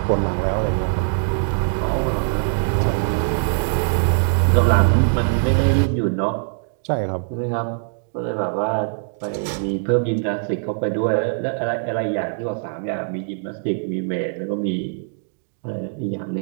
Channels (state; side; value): silent; left; digital silence